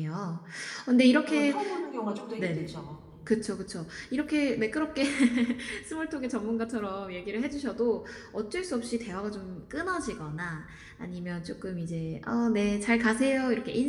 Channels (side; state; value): both; identical; correlation 1.00